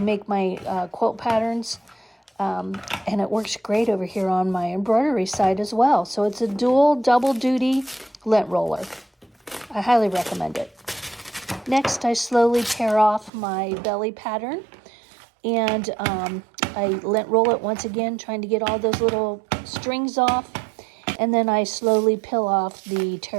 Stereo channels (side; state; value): left; drops out; at 13.3 s